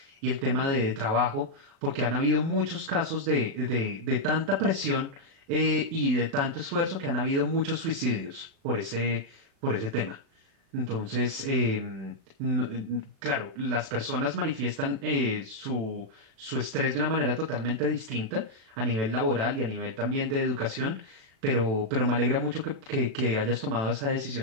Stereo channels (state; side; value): late; left; 36 ms